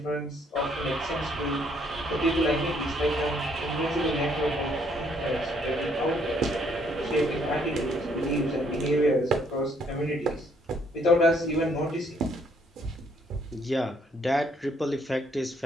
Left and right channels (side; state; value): both; normal; correlation 0.67